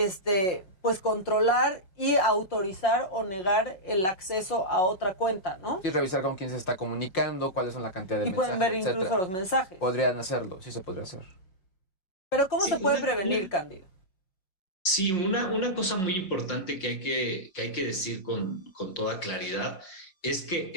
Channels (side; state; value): right; late; 5.5 ms